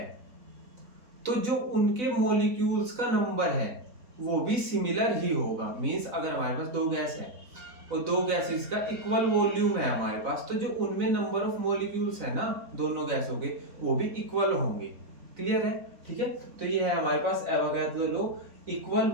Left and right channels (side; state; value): left; late; 4.0 ms